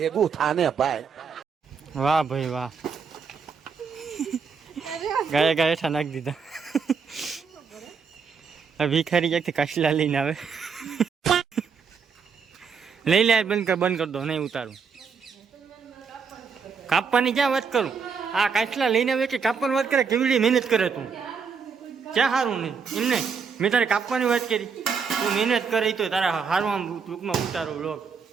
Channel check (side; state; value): left; quieter; 5.9 dB